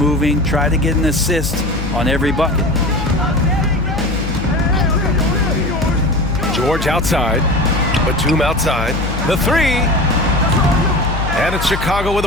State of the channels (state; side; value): noise; left; hum, 5 dB below the sound